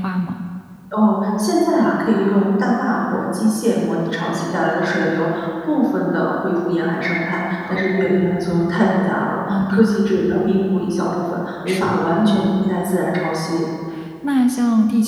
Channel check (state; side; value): identical; both; correlation 1.00